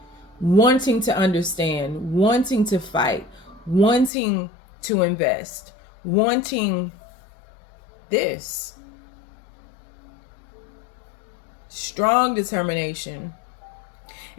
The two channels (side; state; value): right; drops out; at 4.1 s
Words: understand, wanting to fight, wanting to invest, wanting this. Strong determination.